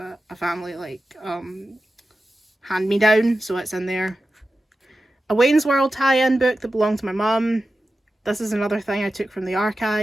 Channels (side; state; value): both; normal; correlation 0.93